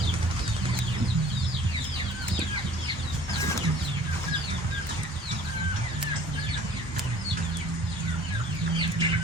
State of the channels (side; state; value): both; normal; correlation 0.50